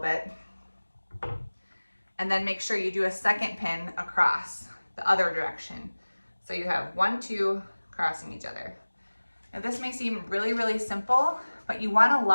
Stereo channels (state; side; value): inverted; both; correlation -1.00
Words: And then make sure you do a second pin across the other direction. So you have 1, 2 crossing each other. Now this may seem really, really simple, but you want to